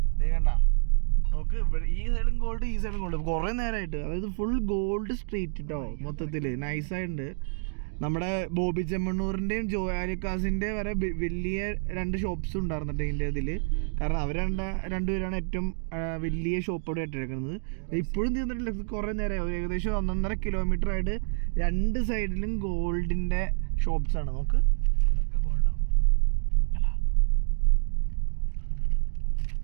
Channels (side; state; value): left; silent; digital silence